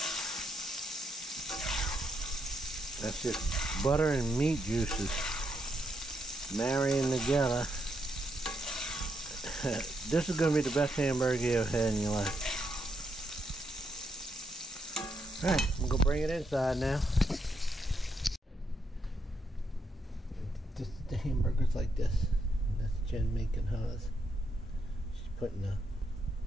That's just butter and meat juices marrying together. This is going to be the best hamburger you ever had in your life. Alright, I'm going to bring it inside now. The hamburger's like this. That's Jen making hers. She's putting the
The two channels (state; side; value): normal; both; correlation 0.79